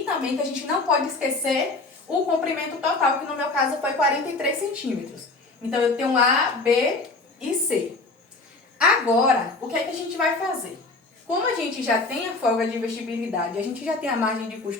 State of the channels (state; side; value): quieter; right; 3.5 dB